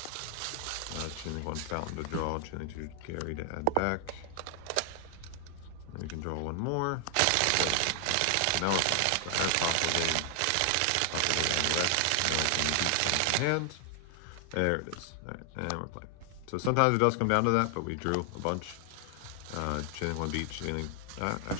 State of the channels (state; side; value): different; both; correlation 0.00